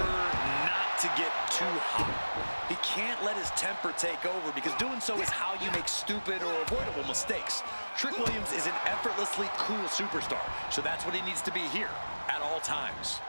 not to get too hot. He can't let his temper take over, because doing so is how you make stupid or avoidable mistakes. Trick Williams is an effortlessly cool superstar, so that's what he needs to be here at all times.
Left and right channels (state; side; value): inverted; both; correlation -1.00